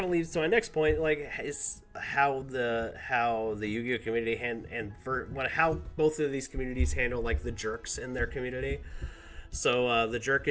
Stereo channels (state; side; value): identical; both; correlation 1.00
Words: of leads to my next point, like is how the Yu-Gi-Oh community how both of these communities handle like the jerks in their community. So the